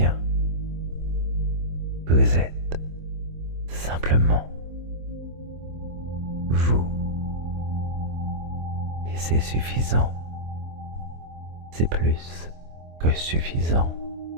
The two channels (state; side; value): late; left; 24 ms